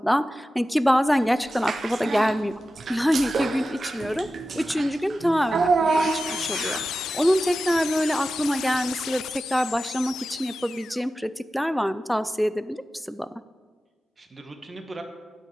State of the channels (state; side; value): normal; both; correlation 0.93